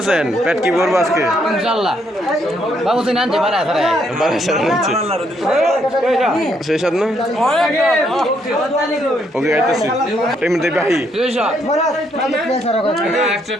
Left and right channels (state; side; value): normal; both; correlation 0.73